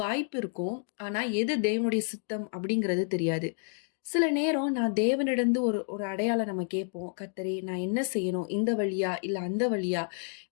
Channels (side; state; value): right; silent; 57 dB below the other